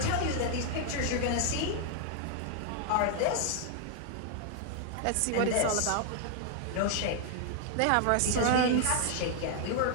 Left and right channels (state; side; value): different; both; correlation 0.00